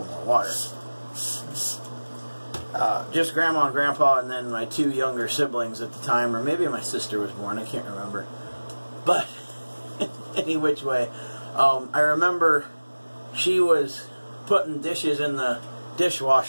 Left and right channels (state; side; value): inverted; both; correlation -1.00